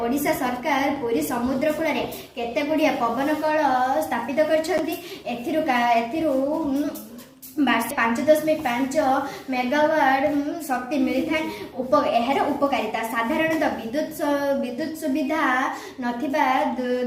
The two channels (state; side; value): identical; both; correlation 1.00